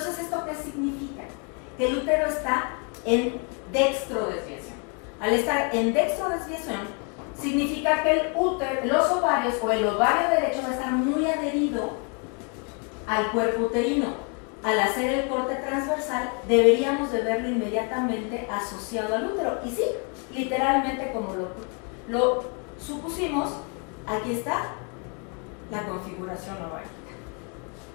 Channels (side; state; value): right; quieter; 37.1 dB